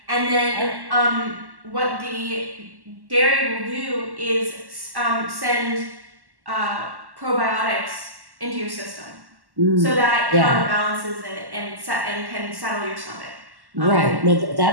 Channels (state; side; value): late; left; 1.1 ms